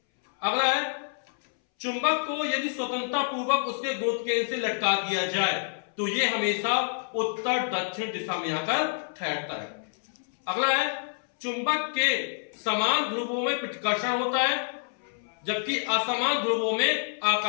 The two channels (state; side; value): silent; right; 60 dB below the other